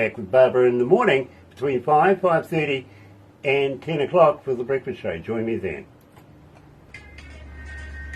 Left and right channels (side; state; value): both; identical; correlation 1.00